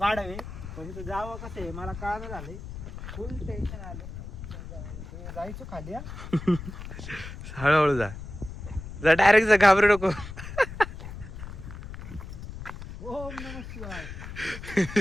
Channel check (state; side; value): noise; left; rumble, 11 dB below the sound